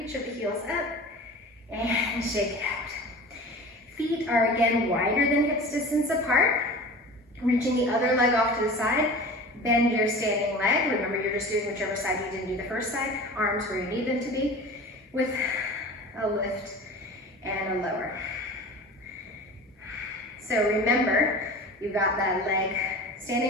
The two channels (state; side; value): normal; both; correlation 0.37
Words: of the heels up, and shake it out. Feet are again wider than hips distance apart, reaching the other leg off to the side. Bend your standing leg. Remember, you're just doing whichever side you didn't do the first side. Arms where you need them to be, with a lift and a lower. So remember, you've got that leg,